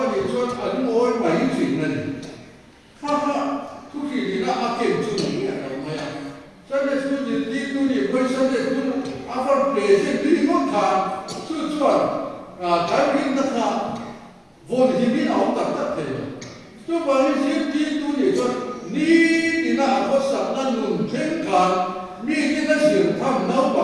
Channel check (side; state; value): both; identical; correlation 1.00